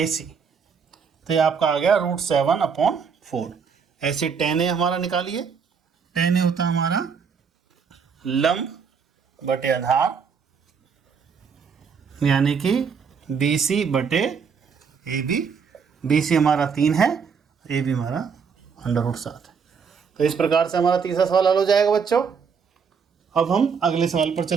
तो ये आपका आ गया √7/4। ऐसे टेन ए हमारा निकालिए, टेन ए होता है हमारा लंब बटे आधार यानी कि BC बटे AB, BC हमारा 3 है, AB हमारा √7 है। तो इस प्रकार से हमारा तीसरा सवाल हल हो जाएगा बच्चों। अब हम अगले सवाल पर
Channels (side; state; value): left; quieter; 6.1 dB